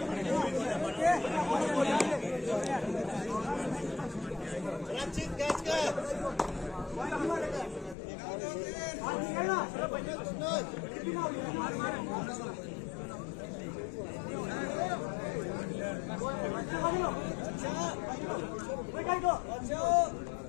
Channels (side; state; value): right; drops out; at 8.0 s